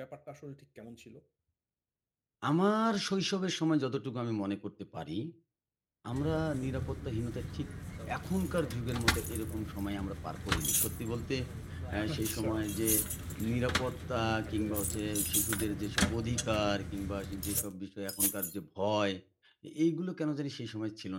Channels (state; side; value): identical; both; correlation 1.00